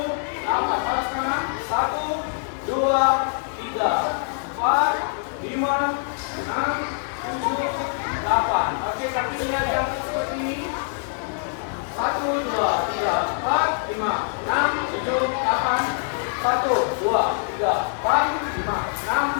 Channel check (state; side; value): silent; right; 62 dB below the other